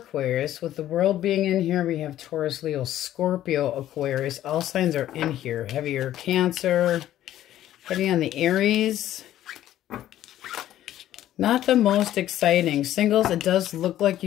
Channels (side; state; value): right; quieter; 12.8 dB